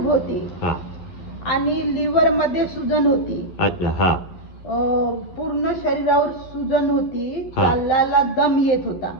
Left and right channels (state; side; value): late; right; 11 ms